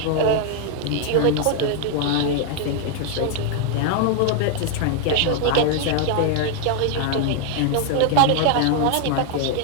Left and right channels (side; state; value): both; different; correlation 0.00